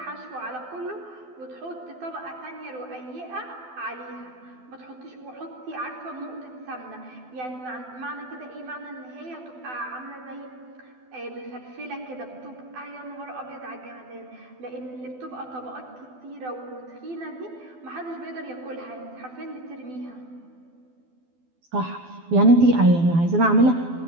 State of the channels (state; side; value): late; left; 12 ms